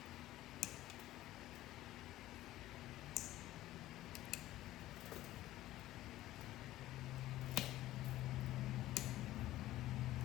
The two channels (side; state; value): right; quieter; 15.3 dB